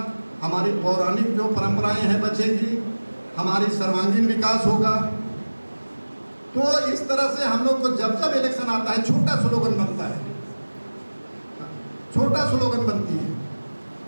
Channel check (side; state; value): both; inverted; correlation -1.00